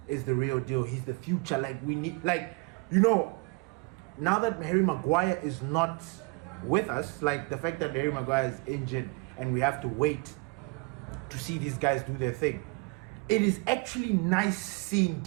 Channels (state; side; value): quieter; left; 28.7 dB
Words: is the real deal. He's the future. Like, we need, now that Harry Maguire is not with us, like the fact that Harry Maguire is injured and we have to wait to see these guys do their thing, it is actually nice seeing